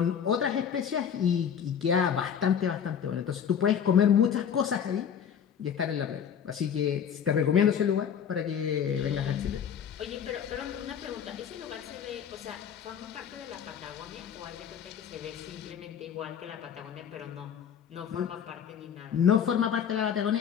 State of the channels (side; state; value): right; quieter; 8.1 dB